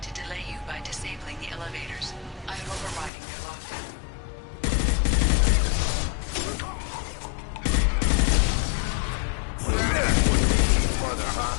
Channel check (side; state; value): right; drops out; at 3.1 s